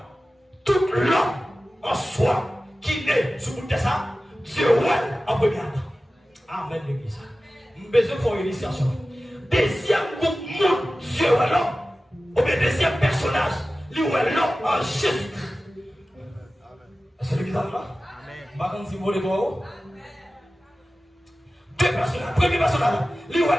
Tout l'homme en soi qui naît sur le ça, Dieu est en premier Adam. Amen, l'église. Nous avons besoin de faire une initiation. Deuxième groupe, Dieu est l'homme. Ou bien deuxième personnage, lui est l'homme en Jésus. C'est l'église là? Amen. Si vous voulez voir. Deux personnages. Premier personnage, lui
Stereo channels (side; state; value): both; normal; correlation 0.96